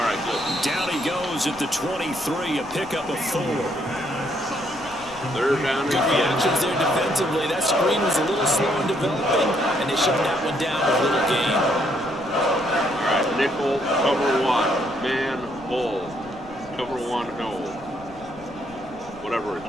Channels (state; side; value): noise; left; rumble, 23 dB below the sound